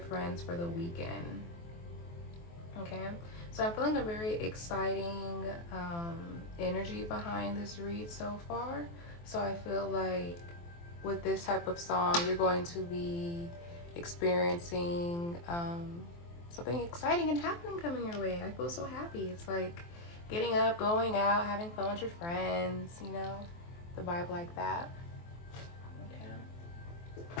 for the weekend. Okay, so I'm feeling a very exciting energy behind this read so far. So I feel like with this type of song, you're going to be experiencing something exciting and happening coming your way. I feel so happy. It's like getting up, going out, having fun with your friends, you know, the vibe like that.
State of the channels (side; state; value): right; late; 23 ms